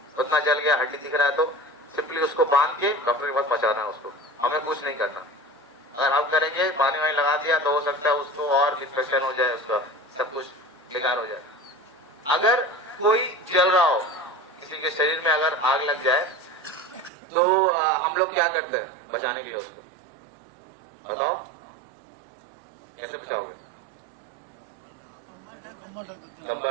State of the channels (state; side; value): drops out; left; at 17.1 s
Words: उतना जल गया, हड्डी दिख रहा है, तो सिंपली उसको बांध के डॉक्टर के पास पहुंचाना है उसको, हमें कुछ नहीं करना। अगर हम करेंगे, पानी वानी लगा दिया तो हो सकता है उसको और इन्फेक्शन हो जाए, उसका सब कुछ बेकार हो जाए। अगर कोई जल रहा हो, किसी के शरीर में अगर आग लग जाए तो हम लोग क्या करते हैं बचाने के लिए उसको, बताओ कैसे बचाओगे?